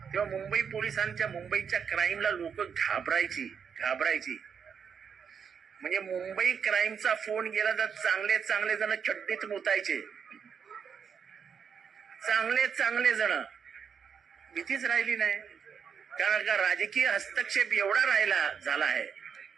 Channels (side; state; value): left; quieter; 6.9 dB